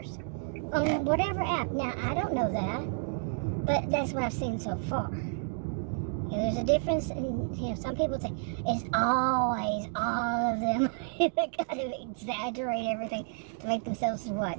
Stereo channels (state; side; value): silent; left; 57 dB below the other